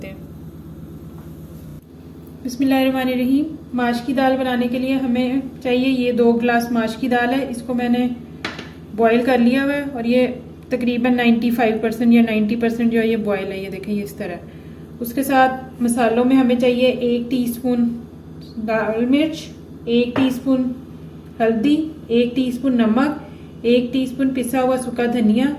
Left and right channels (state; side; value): identical; both; correlation 1.00